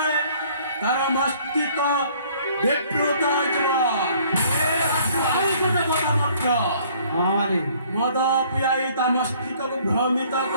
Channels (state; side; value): inverted; both; correlation -0.58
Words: ତାର ମସ୍ତିଷ୍କ ବିକୃତ ହୋଇଯିବ ଆଉ ଗୋଟେ କଥା ମଧ୍ୟ ମଦ ପିଆଇ ତା ମସ୍ତିଷ୍କକୁ ଭ୍ରମିତ